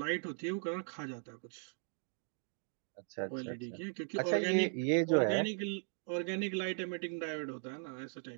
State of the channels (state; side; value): silent; left; 52 dB below the other